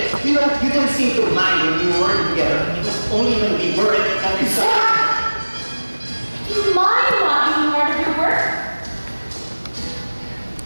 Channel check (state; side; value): inverted; both; correlation -1.00